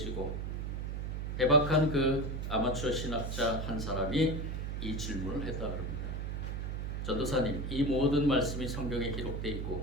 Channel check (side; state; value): right; noise; hum, 3 dB below the sound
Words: 해박한 그 아마추어 신학자 한 사람이 이 질문을 했다 그럽니다. 전도사님, 이 모든 말씀이 성경에 기록되어